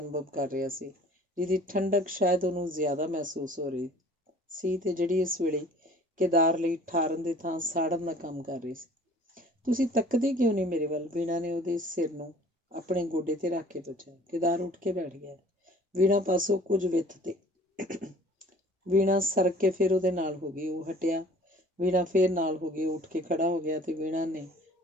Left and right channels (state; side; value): normal; both; correlation 0.50